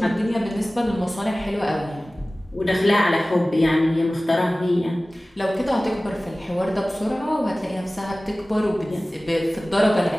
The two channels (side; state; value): both; normal; correlation 0.97